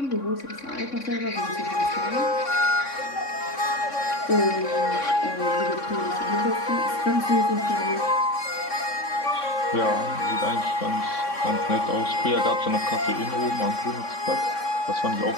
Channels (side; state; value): right; late; 3.6 ms